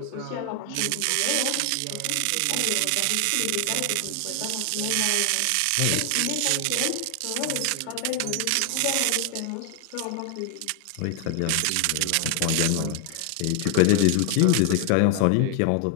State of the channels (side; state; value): both; different; correlation 0.00